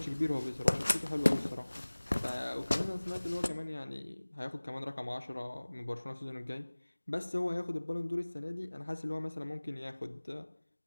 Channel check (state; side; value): inverted; both; correlation -1.00